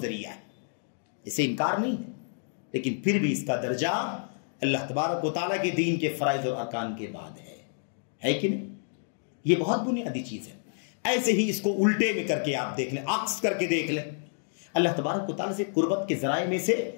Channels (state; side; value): silent; right; digital silence